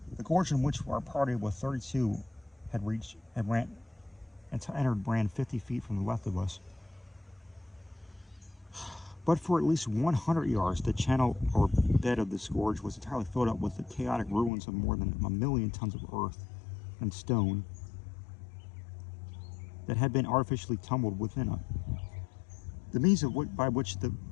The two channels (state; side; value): drops out; right; at 14.5 s